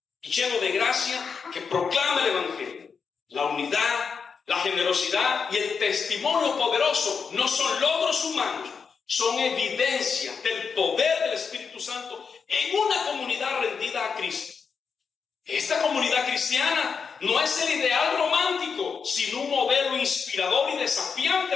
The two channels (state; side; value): quieter; right; 5.8 dB